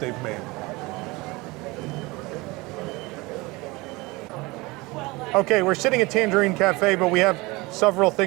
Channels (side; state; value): left; quieter; 23.2 dB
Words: made. Okay, we're sitting at Tangierine Cafe, but we have several